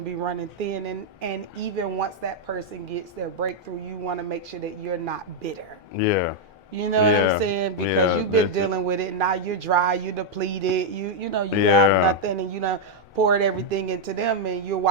be running thin. And even once that person gets their breakthrough, you want to make sure that you're not bitter. yeah, You know what I'm yeah, saying? Because yeah, you've been dealing with it. Now you're dry. You're depleted. You have yeah, nothing, and poured everything into them, and you're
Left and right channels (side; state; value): both; normal; correlation -0.01